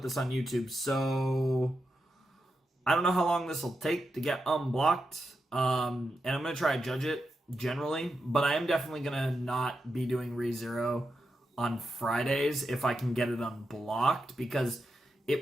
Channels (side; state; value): both; normal; correlation 0.87